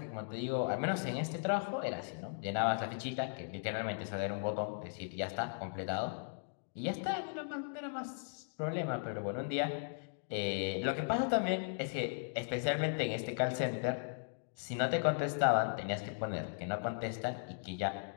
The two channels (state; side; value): silent; right; digital silence